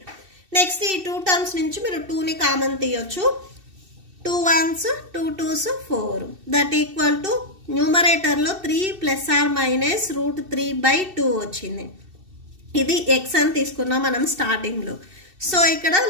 నెక్స్ట్ ఈ 2 టర్మ్స్ నుంచి మీరు 2ని కామన్ తీయొచ్చు. 2 1s 2 2s 4 that equal to న్యూమరేటర్లో 3 ± √3/2 వచ్చింది. ఇది x అని తీసుకున్నాం మనం స్టార్టింగ్లో. సో ఇక్కడ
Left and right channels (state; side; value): late; left; 2.7 ms